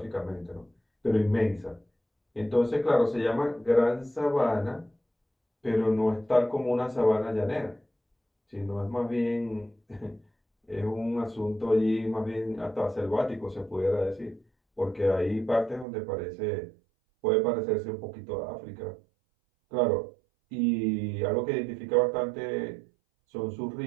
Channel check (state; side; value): drops out; left; at 15.9 s